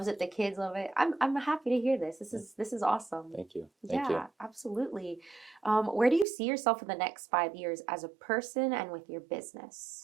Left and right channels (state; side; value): drops out; left; at 6.2 s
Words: it, the kids love it. I'm happy to hear this. This is awesome. Thank you. Thank you. Yeah, absolutely. Where do you see yourself in the next 5 years as a person and with your